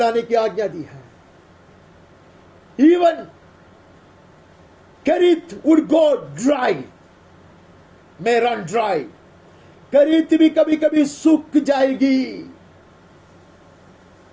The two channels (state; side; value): identical; both; correlation 1.00